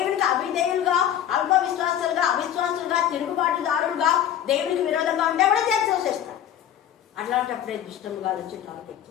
అవిధేయులుగా, అల్ప విశ్వాసులుగా, అవిశ్వాసులుగా, తిరుగుబాటుదారులుగా, దేవునికి విరోధంగా ఉంటే కూడా చేస్తాడు. అట్లాంటప్పుడే దుష్టముగా వచ్చి టార్గెట్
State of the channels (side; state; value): right; quieter; 10.4 dB